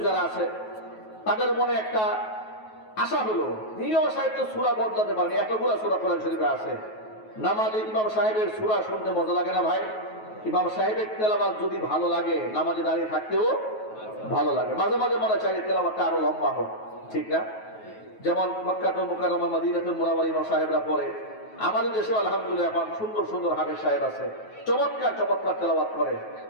যারা আছে, তাদের মনে একটা আশা হলো, ইমাম সাহেব তো সূরা বদলাতে পারেনি, এতগুলো সূরা কোরআন শরীফে আছে, নামাজে ইমাম সাহেবের সূরা শুনতে মজা লাগে না ভাই? ইমাম সাহেবের তেলাওয়াত যদি ভালো লাগে, নামাজে দাঁড়িয়ে থাকতেও ভালো লাগে। মাঝে মাঝে মনে চাই তেলাওয়াতটা আরো লম্বা হোক, ঠিক না? যেমন মক্কাতুল মুকাররমা, মদিনাতুল মুনাওয়ারা ইমাম সাহেবরা পড়ে। আমাদের দেশে আলহামদুলিল্লাহ এখন সুন্দর সুন্দর হাফেজ সাহেব আছে, চমৎকার চমৎকার তেলাওয়াত করে।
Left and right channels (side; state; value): right; late; 9.3 ms